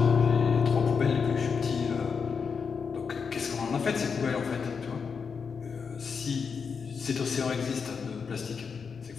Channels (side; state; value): right; quieter; 5.8 dB